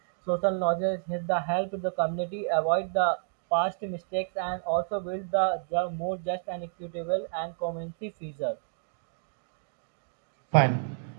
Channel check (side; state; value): left; silent; digital silence